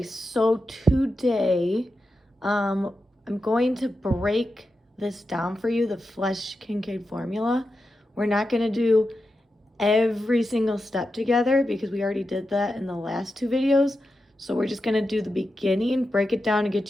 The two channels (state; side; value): normal; both; correlation 0.89